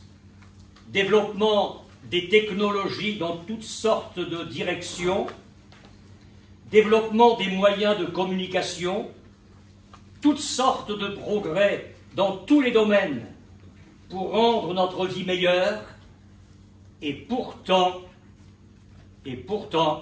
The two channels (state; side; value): identical; both; correlation 1.00